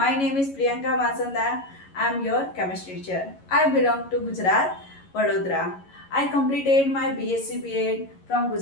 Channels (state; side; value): late; right; 11 ms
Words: name is Priyanka Vasanda. I am your chemistry teacher. I belong to Gujarat, Vadodara. I completed my BSc B.Ed from